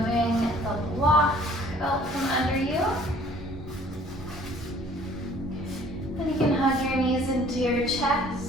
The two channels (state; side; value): normal; both; correlation 0.55